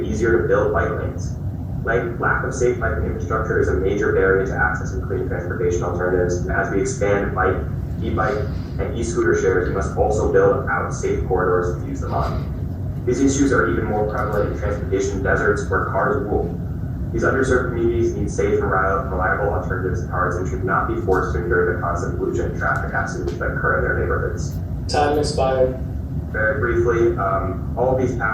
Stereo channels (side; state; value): both; identical; correlation 1.00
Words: easier to build bike lanes. Lack of safe biking infrastructure is a major barrier to accessing clean transportation alternatives, and as we expand bike, e-bike, and e-scooter shares, we must also build out safe corridors to use them on. These issues are even more prevalent in transportation deserts where cars rule. These underserved communities need safe and reliable alternatives to cars and should not be forced to endure the constant pollution and traffic accidents that occur in their neighborhoods. Time expired. Very briefly, all of these